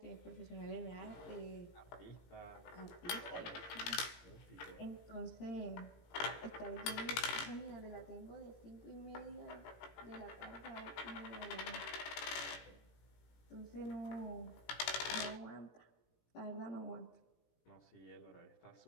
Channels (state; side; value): late; right; 18 ms